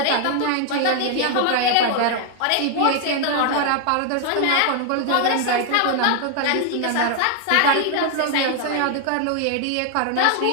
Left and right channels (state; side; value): different; both; correlation 0.00